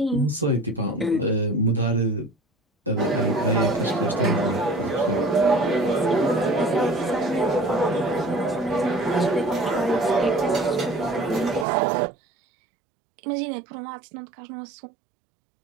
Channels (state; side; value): drops out; left; at 11.7 s